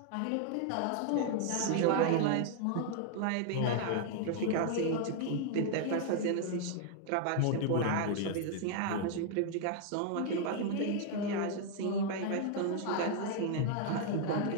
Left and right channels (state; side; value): different; both; correlation 0.00